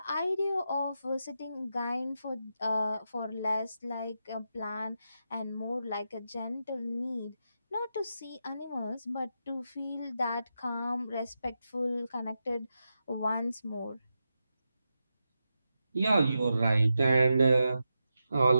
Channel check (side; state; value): both; inverted; correlation -0.87